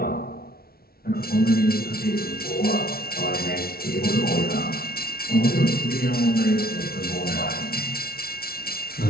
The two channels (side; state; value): right; late; 0.44 ms